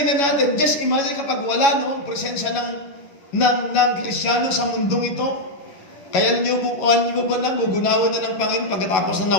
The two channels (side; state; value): right; late; 11 ms